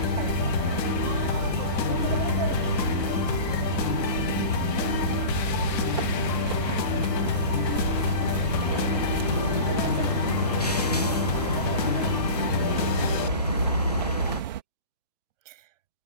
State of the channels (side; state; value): both; inverted; correlation -0.33